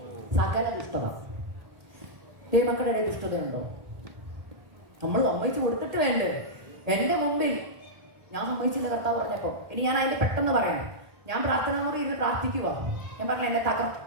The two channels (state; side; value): late; left; 1.7 ms